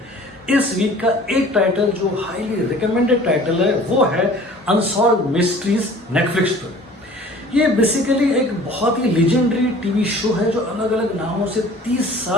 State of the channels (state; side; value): normal; both; correlation 0.48